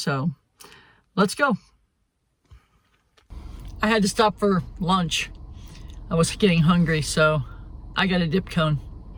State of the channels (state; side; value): identical; both; correlation 1.00